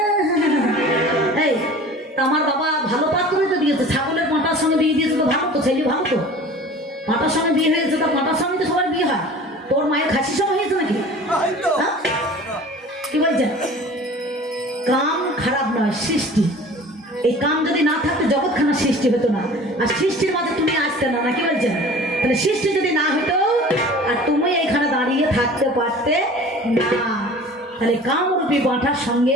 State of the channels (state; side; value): normal; both; correlation 0.43